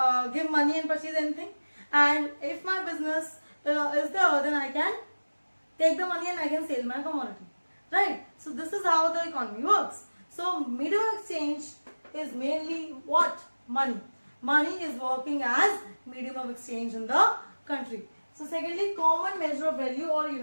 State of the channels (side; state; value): both; inverted; correlation -1.00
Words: give money and purchase anything, and if my business is there, then I can take the money and I can sell my commodity, right? So this is how the economy works. So medium of exchange is mainly what? Money. Money is working as medium of exchange in the country. So secondly, common measure of value or